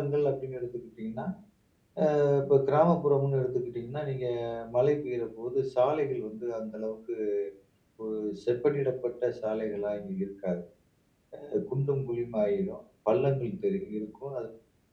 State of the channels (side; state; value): both; identical; correlation 1.00